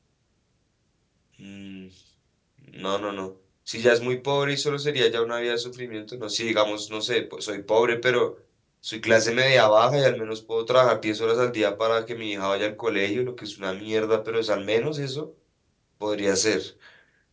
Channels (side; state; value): both; identical; correlation 1.00